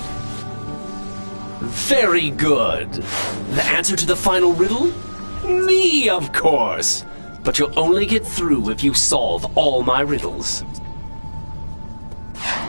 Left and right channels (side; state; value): both; inverted; correlation -1.00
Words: Very good. The answer to the final riddle? Me, of course. But you'll only get through if you solve all my riddles.